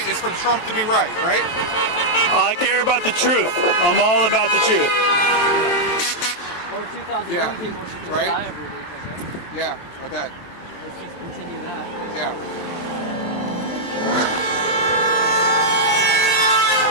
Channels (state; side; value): late; right; 23 ms